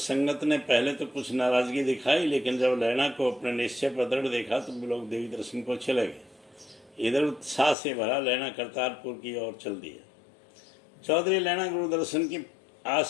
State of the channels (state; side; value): drops out; right; at 7.8 s